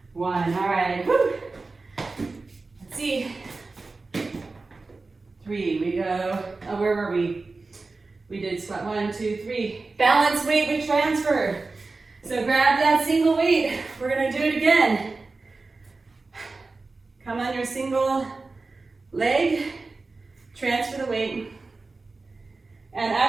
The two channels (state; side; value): quieter; left; 3.7 dB